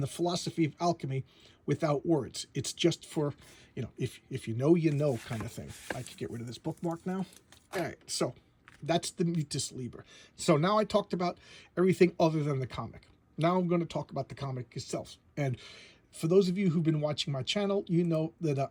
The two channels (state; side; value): identical; both; correlation 1.00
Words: the philosophy of alchemy without words. It's just for, if you know kind of thing. I can get rid of this bookmark now. All right, so that's the Mutus Liber. So now I talked about everything other than the comic. Now I'm going to talk about the comic itself. And for those of you who've been watching my channel, you know that